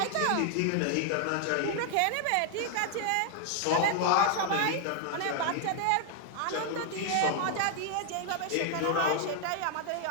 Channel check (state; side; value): different; both; correlation 0.00